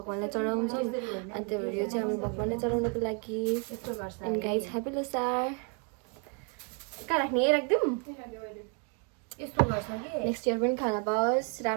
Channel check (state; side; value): quieter; left; 37.4 dB